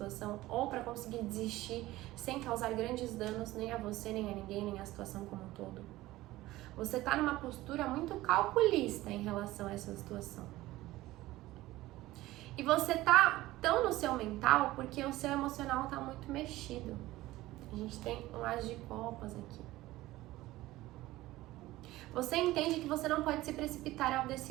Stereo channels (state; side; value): quieter; left; 17.3 dB